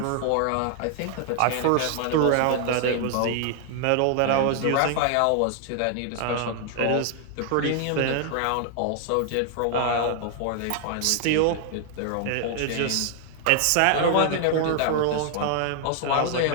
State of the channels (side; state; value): both; different; correlation 0.00